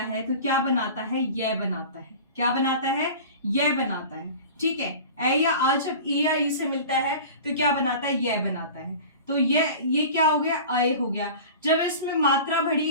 तो क्या बनाता है? यह बनाता है। क्या बनाता है? यह बनाता है। ठीक है, ए या आ जब ई या ई से मिलता है तो क्या बनाता है? यह बनाता है। तो ये क्या हो गया? आए हो गया। जब इसमें मात्रा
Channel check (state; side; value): inverted; both; correlation -0.37